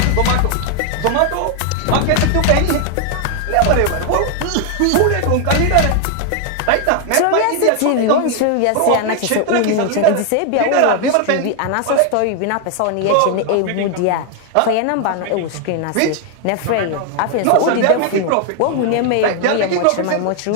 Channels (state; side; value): different; both; correlation 0.00